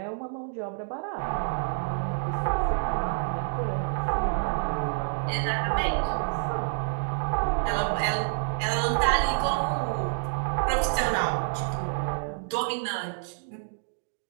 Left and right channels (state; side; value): silent; left; digital silence